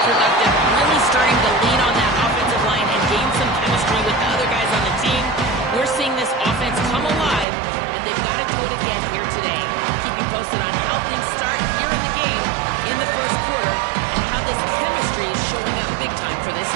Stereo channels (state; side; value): drops out; left; at 7.5 s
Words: productive, really starting to lean on that offensive line and gain some chemistry with the other guys on the team. We're seeing this offense come alive, and they've got to do it again here today. I'll keep you posted on how things start here in the game in the first quarter and how this chemistry is showing up big time for this